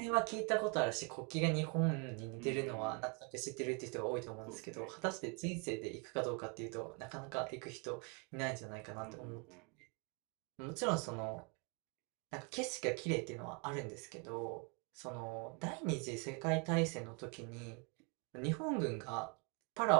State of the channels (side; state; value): left; quieter; 34.0 dB